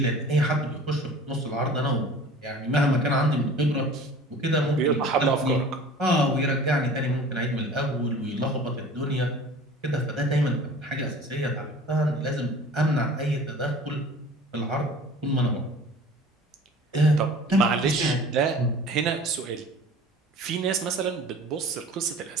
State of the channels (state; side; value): normal; both; correlation 0.43